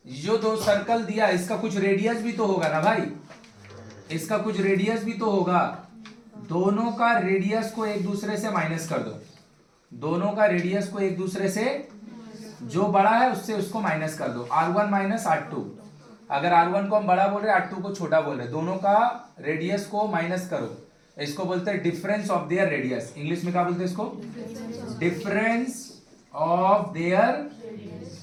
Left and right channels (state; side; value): identical; both; correlation 1.00